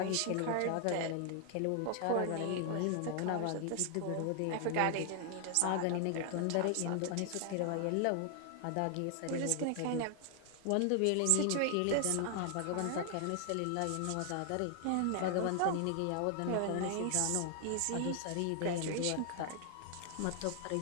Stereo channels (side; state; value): both; different; correlation 0.00